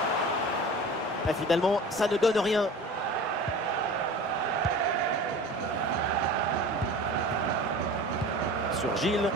Et finalement, ça ne donne rien. Sur Gilles.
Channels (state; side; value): normal; both; correlation 0.37